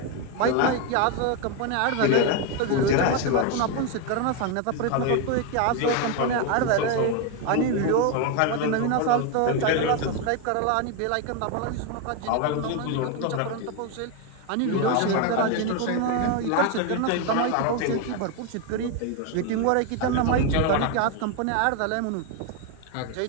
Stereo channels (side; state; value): both; different; correlation 0.02